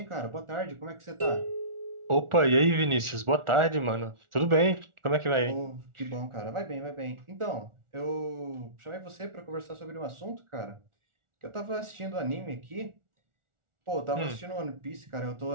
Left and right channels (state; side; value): late; left; 1.4 ms